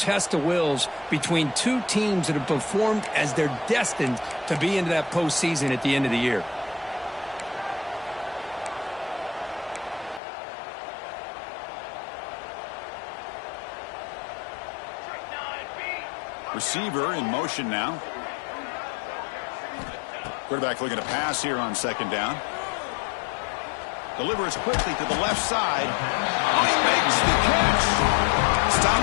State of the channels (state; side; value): drops out; right; at 10.2 s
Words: of wills between two teams that have performed as they're destined to be into that postseason at the end of the year. Receiver in motion now. Quarterback looking to pass here on second down. Delivers quickly to the left side. Oh, he makes the catch. Stop